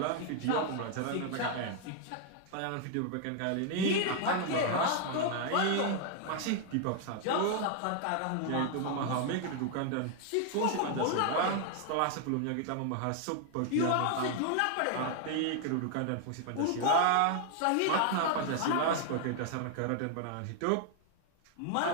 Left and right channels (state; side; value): different; both; correlation 0.00